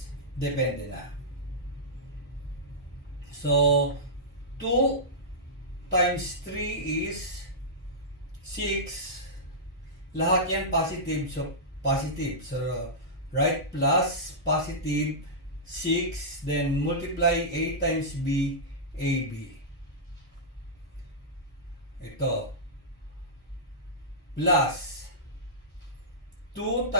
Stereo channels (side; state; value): both; normal; correlation -0.14